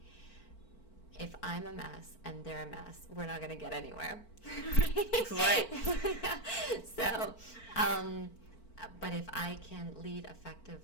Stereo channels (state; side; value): late; right; 4.5 ms